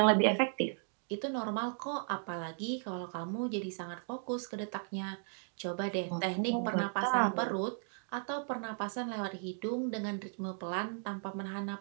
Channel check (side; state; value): left; silent; 54 dB below the other